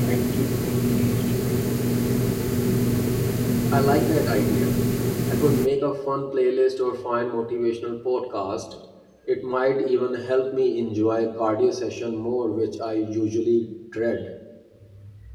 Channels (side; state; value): both; identical; correlation 1.00